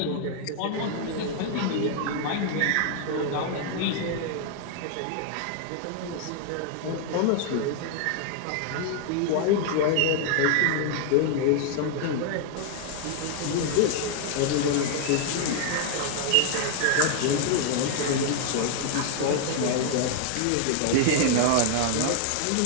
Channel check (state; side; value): different; both; correlation 0.00